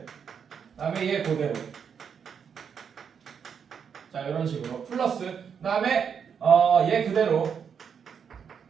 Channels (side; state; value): left; quieter; 7.1 dB